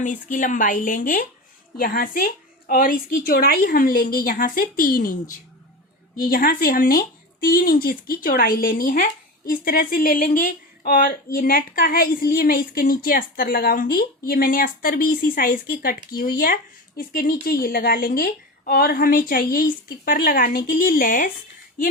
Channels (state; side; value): normal; both; correlation 0.26